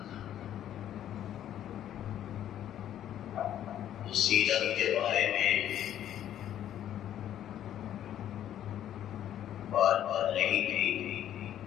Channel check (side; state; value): right; quieter; 11.1 dB